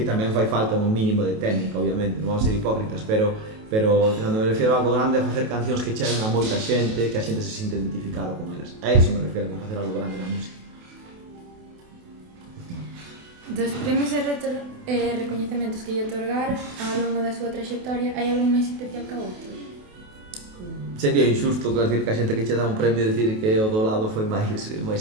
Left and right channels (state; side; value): late; left; 28 ms